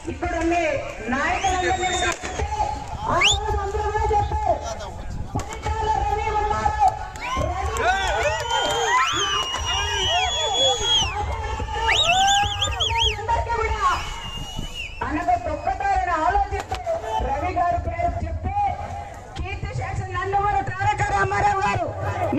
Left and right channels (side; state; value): both; identical; correlation 1.00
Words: ఇక్కడ ఉండే నాయకులందరినీ ఆ రోజు అందరూ కూడా చెప్పారు. పరిటాల రవి ఉన్నారు, అనగా తొక్కతారని ఆలోచిస్తూ రవి గారి పేరు చెప్తే కీర్తి శేషులు నందమూరి తారక రామారావు గారు